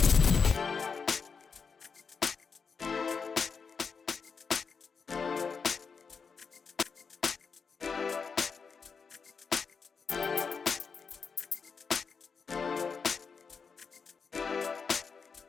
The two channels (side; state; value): right; quieter; 5.5 dB